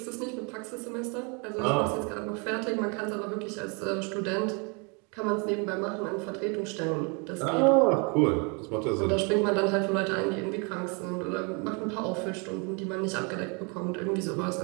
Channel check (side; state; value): left; quieter; 33.1 dB